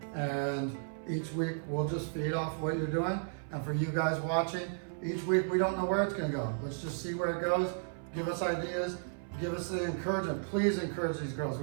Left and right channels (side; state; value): left; silent; 55 dB below the other